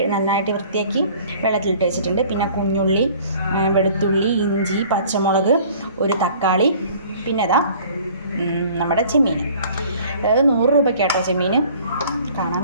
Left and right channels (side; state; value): both; inverted; correlation -0.51